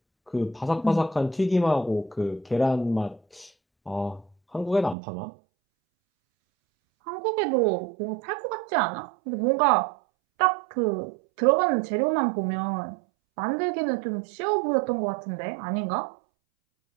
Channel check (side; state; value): left; drops out; at 5.0 s